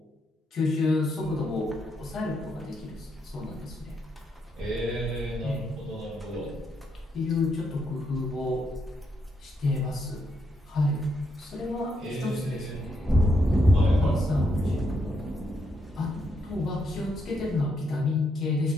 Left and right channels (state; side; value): normal; both; correlation 0.78